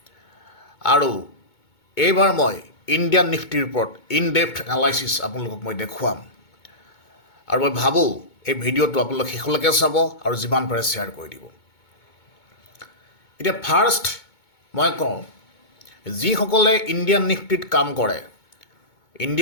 আৰু এইবাৰ মই ইণ্ডিয়ান নিফটিৰ ওপৰত ইন ডেপথ এনালাইচিছ আপোনালোকক মই দেখুৱাম, আৰু মই ভাবোঁ এই ভিডিঅ'টো আপোনালোকে শেষলৈকে চাব আৰু যিমান পাৰে শ্বেয়াৰ কৰি দিব। এতিয়া ফাৰ্ষ্ট মই কওঁ, যিসকলে ইণ্ডিয়ান নিফটিত কাম কৰে,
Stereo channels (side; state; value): right; late; 2.2 ms